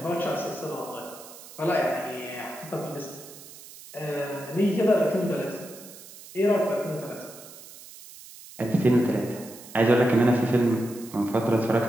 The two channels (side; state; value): right; noise; hiss, 18 dB below the sound